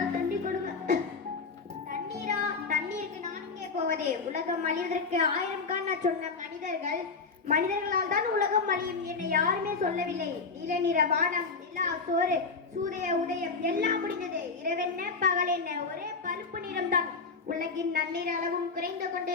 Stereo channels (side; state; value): right; quieter; 4.5 dB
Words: தண்ணி கொடுங்க. தண்ணீரா? தண்ணீருக்கு நான் இங்கே போவதே? உலகம் அழிவதற்கு 1000 காண சொன்ன மனிதர்களால் தான் உலகம் அழியும். என்னை யாருமே சொல்லவில்லை. நீல நிற வானம், நிலா, சோறு, சூரிய உதயம் எல்லாம் முடிந்தது. இரவென்ன பகல் என்ன, ஒரே பழுப்பு நிறம் தான். உலகின் நன்னீர் அளவும் குறைந்து